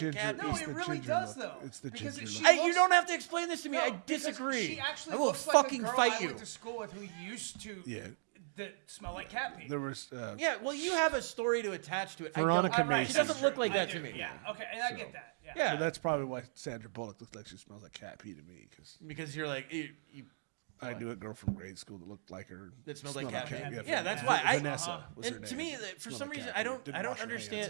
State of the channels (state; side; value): silent; left; digital silence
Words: ginger- cat. No, It's it the really ginger does look. though. It's the because ginger she look. You looks- don't have to explain this to me. No, I because disagree. She actually I will looks like a fucking girl fight I you. went to school with who used to Yeah. that smell like cat pee. There was Yeah, well, you have a story to attach to it. Veronica I don't. Mason. She doesn't that's look true. like that I to do, me. Yeah, okay, and I get that. Yeah. Yeah. So that's probably why Sandra Bullock looks like she smells like cat pee to me because Because you're like, you I knew a girl from grade school that looked like her. that smells like smelled cat. cat. Yeah, that's Yeah. why. Vanessa was her And to name. me, for Smelled some like reason, cat I pee. don't Didn't wash her